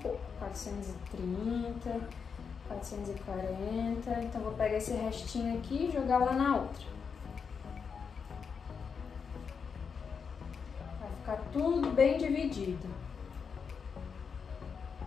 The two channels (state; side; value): quieter; right; 6.0 dB